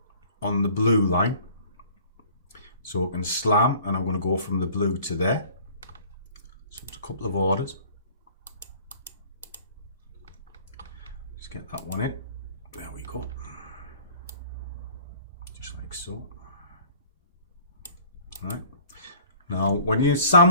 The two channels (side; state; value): both; inverted; correlation -0.51